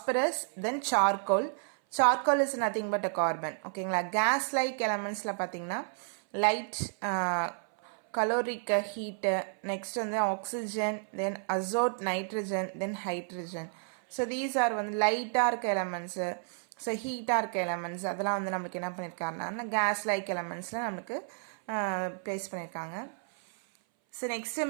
then charcoal. Charcoal is nothing but a carbon. ஓகேங்களா? கேஸ் லைக் எலமெண்ட்ஸில் பார்த்தீங்கன்னா லைட், caloric heat, next வந்து oxygen, then azote, nitrogen, then hydrogen. So these are வந்து லைட்டாக இருக்க elements, ஸோ ஹீட்டாக இருக்க எலமெண்ட்ஸ் அதெல்லாம் வந்து நம்மளுக்கு என்ன பண்ணியிருக்காருன்னா கேஸ் லைக் எலமெண்ட்ஸில் நம்மளுக்கு ப்ளேஸ் பண்ணியிருக்காங்க. ஸோ நெக்ஸ்ட்டு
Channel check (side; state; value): left; silent; 57 dB below the other